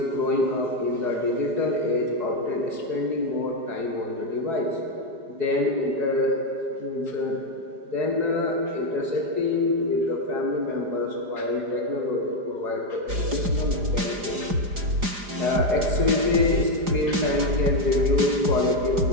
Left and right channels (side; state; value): left; late; 4.9 ms